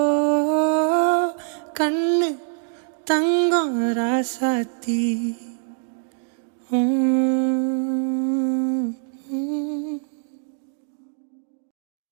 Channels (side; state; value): left; silent; 63 dB below the other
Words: கண்ணு தங்கம் ராசாத்தி